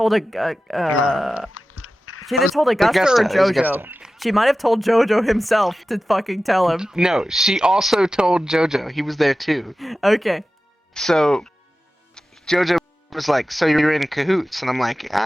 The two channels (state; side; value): normal; both; correlation 0.94